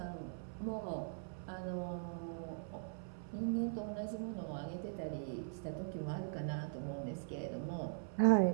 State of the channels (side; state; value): left; silent; 50 dB below the other